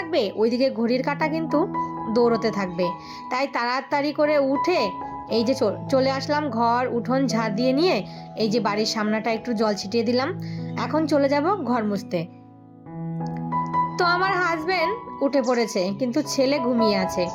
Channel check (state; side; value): identical; both; correlation 1.00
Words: ওইদিকে ঘড়ির কাঁটা কিন্তু দৌড়তে থাকবে। তাই তাড়াতাড়ি করে উঠে এই যে চলে আসলাম, ঘর উঠোন ঝাড় দিয়ে নিয়ে এই যে বাড়ির সামনাটা একটু জল ছিটিয়ে দিলাম। এখন চলে যাব ঘর মুছতে। তো আমার হাজবেন্ড উঠে পড়েছে, কিন্তু ছেলে ঘুমিয়ে আছে।